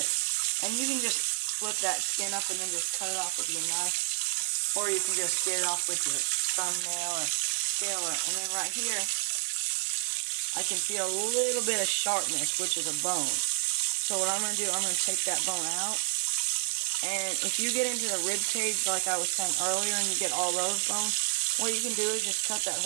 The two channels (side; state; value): left; silent; digital silence